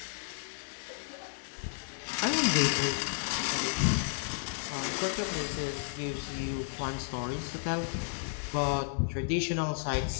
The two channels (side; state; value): right; silent; digital silence